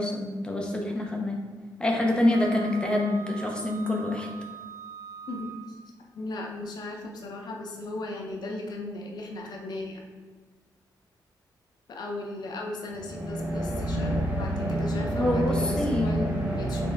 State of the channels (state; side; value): normal; both; correlation 0.80